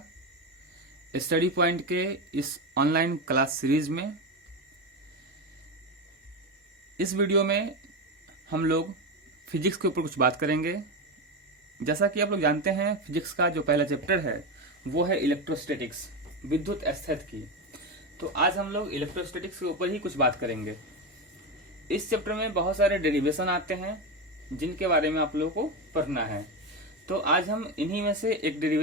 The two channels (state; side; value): normal; both; correlation 0.15